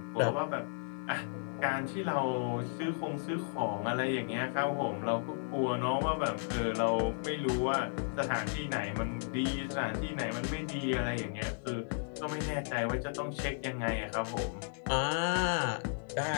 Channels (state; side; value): silent; right; digital silence